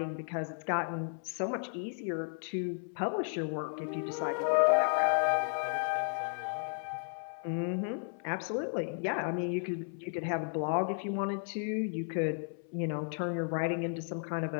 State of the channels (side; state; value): right; silent; 55 dB below the other